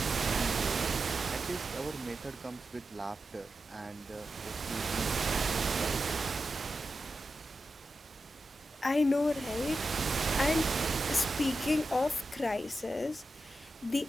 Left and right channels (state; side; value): normal; both; correlation 0.91